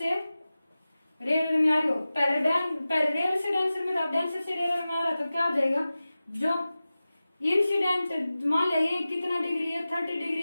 रेयर में आ रही हो, पहले रेयर से डेंसर में था, डेंसर से रेयर में आ रहा तो क्या हो जाएगा, जो इंसिडेंट मान लिया ये कितना डिग्री है 30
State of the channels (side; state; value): both; inverted; correlation -0.95